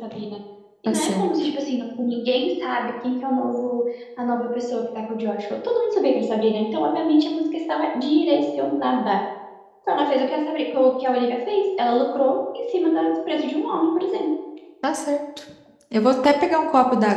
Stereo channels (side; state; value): both; identical; correlation 1.00